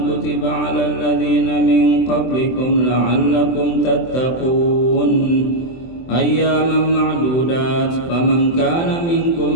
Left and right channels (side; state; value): right; late; 24 ms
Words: kutiba 'alal ladzina min qablikum la'allakum tattaqun. Ayyaman ma'dudat. Faman kana